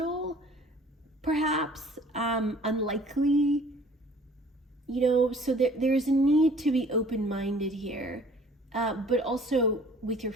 perhaps, unlikely, so there's a need to be open-minded here, but also with your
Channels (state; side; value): normal; both; correlation 0.52